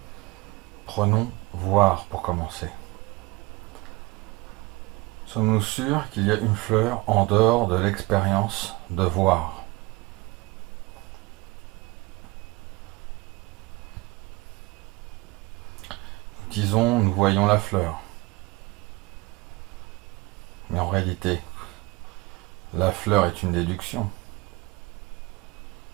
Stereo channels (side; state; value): left; quieter; 23.1 dB